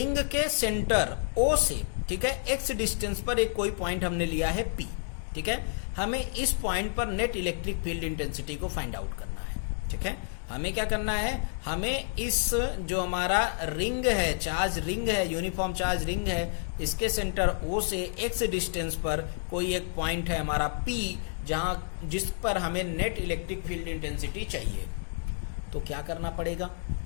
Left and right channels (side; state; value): right; silent; digital silence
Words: के सेंटर ओ से, ठीक है, एक्स डिस्टेंस पर एक कोई पॉइंट हमने लिया है पी। ठीक है, हमें इस पॉइंट पर नेट इलेक्ट्रिक फील्ड इंटेंसिटी को फाइंड आउट करना है। ठीक है, हमें क्या करना है, हमें इस जो हमारा रिंग है, चार्ज रिंग है, यूनिफॉर्म चार्ज रिंग है, इसके सेंटर ओ से एक्स डिस्टेंस पर कोई एक पॉइंट है हमारा पी, जहां जिस पर हमें नेट इलेक्ट्रिक फील्ड इंटेंसिटी चाहिए। तो क्या करना पड़ेगा,